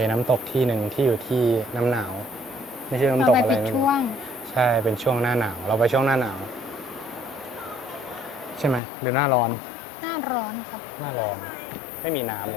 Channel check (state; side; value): drops out; right; at 8.8 s